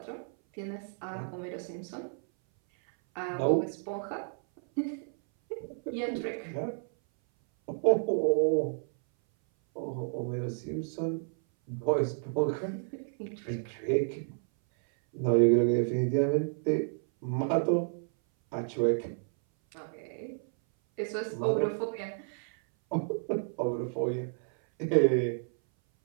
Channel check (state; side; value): silent; left; 57 dB below the other